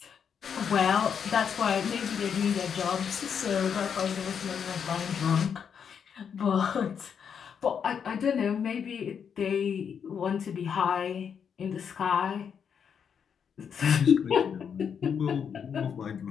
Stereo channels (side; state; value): right; quieter; 7.3 dB